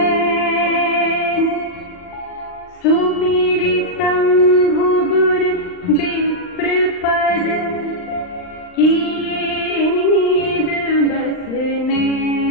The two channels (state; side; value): late; right; 39 ms